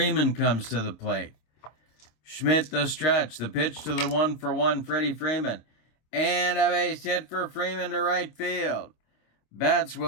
comes to the plate. Schmidt, the stretch. The pitch to the 1-for-1 Freddie Freeman. And a base hit for Freeman to right field. Betts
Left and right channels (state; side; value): late; right; 26 ms